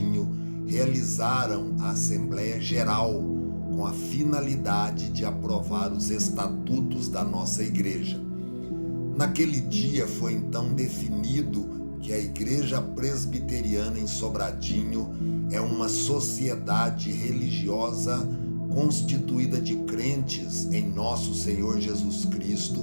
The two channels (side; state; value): both; inverted; correlation -1.00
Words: realizaram a Assembleia Geral com a finalidade de aprovar os estatutos da nossa igreja. Naquele dia foi então definido que a Igreja Presbiteriana em Sobradinho é uma sociedade religiosa constituída de crentes em nosso Senhor Jesus